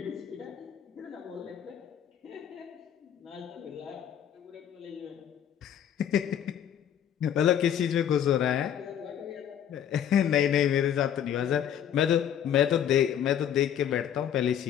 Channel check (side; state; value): right; quieter; 9.6 dB